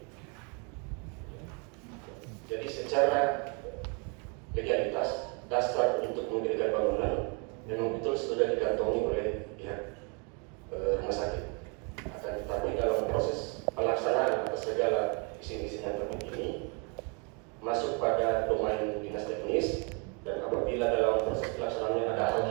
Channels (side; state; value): left; quieter; 34.6 dB